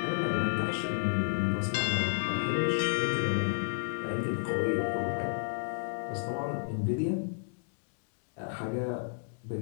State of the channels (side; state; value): right; silent; digital silence